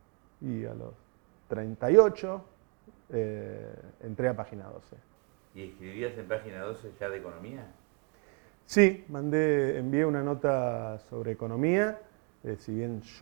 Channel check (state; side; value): quieter; left; 35.2 dB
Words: Y a los 38 entré a Página 12. ¿Y escribías en Página 12 ya de economía? Sí, envié una nota sobre economía, si bien